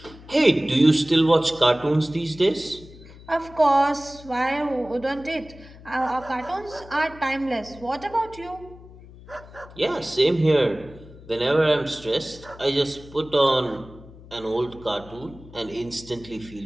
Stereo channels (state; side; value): noise; left; hum, 19 dB below the sound